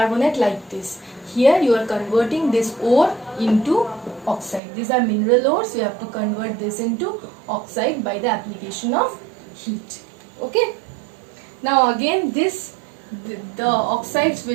like this. Here you are converting this ore into oxide. These are mineral ores. You have to convert this into oxide by the application of heat. Okay. Now again the oxides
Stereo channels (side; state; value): left; drops out; at 4.6 s